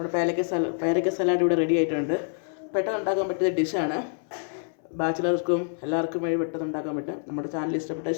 പേരയ്ക്ക സലാഡ് ഇവിടെ റെഡി ആയിട്ടുണ്ട്. പെട്ടെന്ന് ഉണ്ടാക്കാൻ പറ്റിയ ഡിഷാണ്. ബാച്ചിലർക്കും എല്ലാവർക്കും വേണ്ടി പെട്ടെന്ന് ഉണ്ടാക്കാൻ പറ്റും. നമ്മുടെ ചാനൽ ഇഷ്ടപ്പെട്ടാൽ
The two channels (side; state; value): right; silent; 60 dB below the other